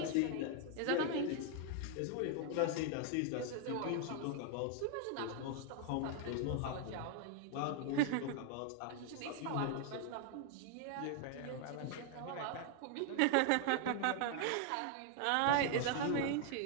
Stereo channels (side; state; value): both; different; correlation 0.00